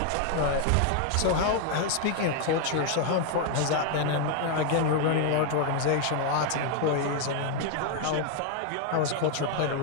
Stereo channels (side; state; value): both; different; correlation 0.01